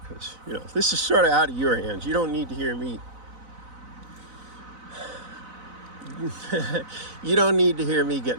because this is sort of out of your hands. You don't need to hear me. You don't need to hear me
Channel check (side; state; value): left; late; 4.0 ms